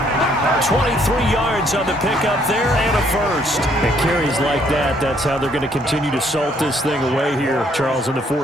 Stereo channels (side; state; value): both; normal; correlation 0.67